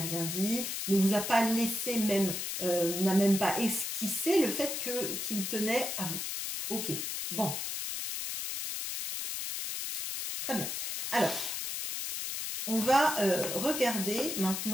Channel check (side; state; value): left; noise; hiss, 3 dB below the sound